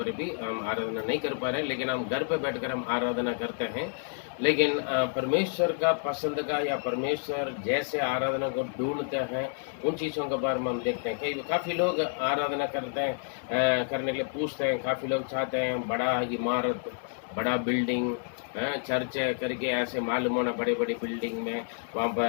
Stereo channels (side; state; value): right; silent; 58 dB below the other